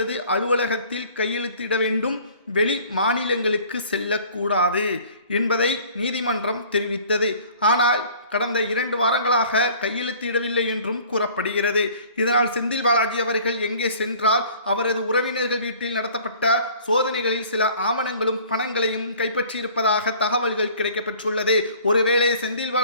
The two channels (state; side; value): inverted; both; correlation -0.51